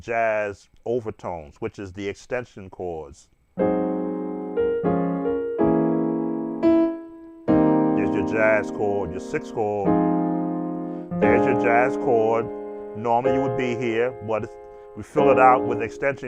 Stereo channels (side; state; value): both; identical; correlation 1.00